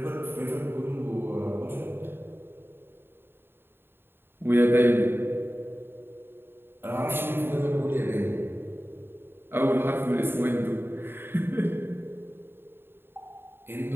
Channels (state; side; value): late; left; 0.11 ms